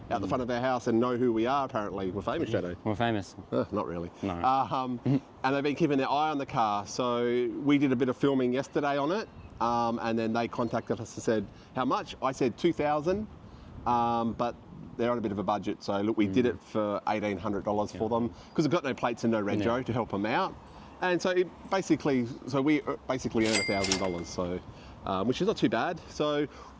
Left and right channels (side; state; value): both; identical; correlation 1.00